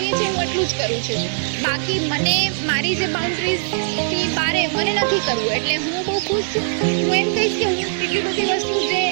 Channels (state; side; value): silent; left; 65 dB below the other